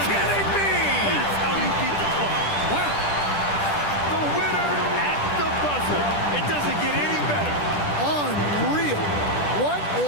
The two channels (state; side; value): late; right; 10 ms